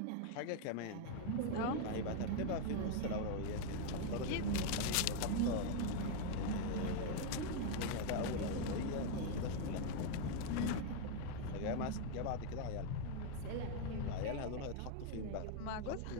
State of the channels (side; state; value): both; different; correlation 0.01